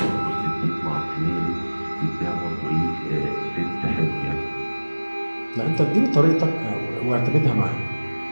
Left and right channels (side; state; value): both; inverted; correlation -1.00